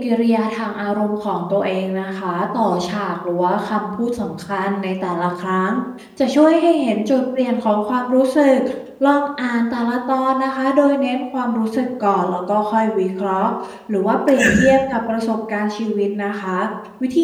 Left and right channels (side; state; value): both; identical; correlation 1.00